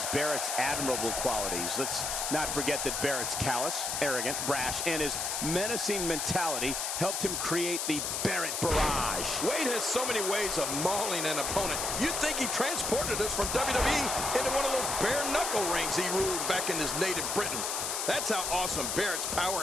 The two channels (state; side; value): noise; left; hiss, 1 dB below the sound